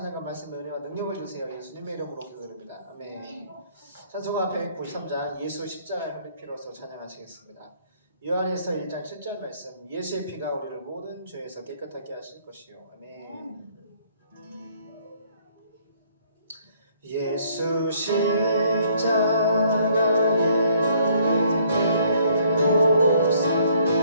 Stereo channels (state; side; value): inverted; both; correlation -0.64